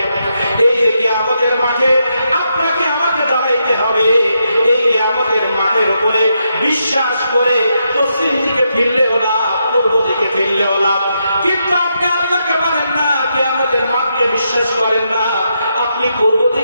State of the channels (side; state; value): both; inverted; correlation -0.81